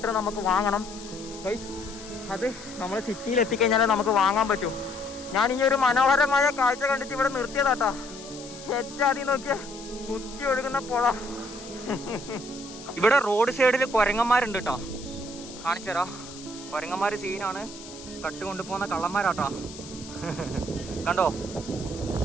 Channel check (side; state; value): left; noise; hiss, 16 dB below the sound